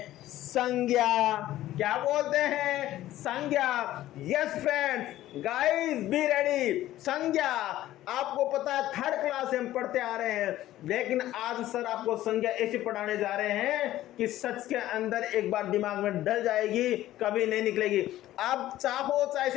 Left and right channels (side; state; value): right; quieter; 14.4 dB